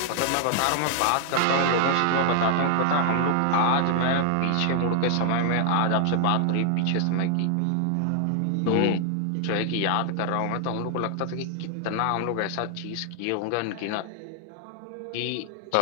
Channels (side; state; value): both; different; correlation 0.00